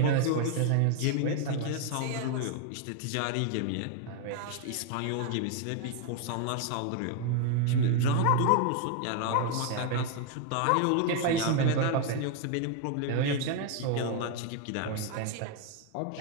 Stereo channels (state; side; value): different; both; correlation 0.01